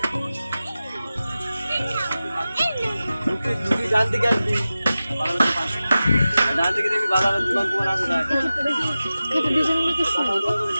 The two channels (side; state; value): both; inverted; correlation -0.95